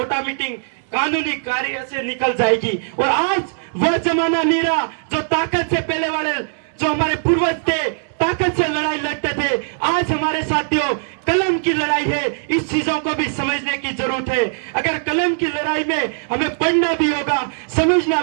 ऑटोमेटिक कानूनी कार्य से निकल जाएगी। और आज वह जमाना नहीं रहा जो ताकत से पहले वाले जो हमारे पूर्वज थे, ताकत से लड़ाई लड़ते थे। आज हमारे साथियों कलम की लड़ाई है, इस चीजों को भी समझने की जरूरत है। अगर कलम की लड़ाई में हमें पढ़ना भी होगा, समझना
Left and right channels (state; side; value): silent; left; digital silence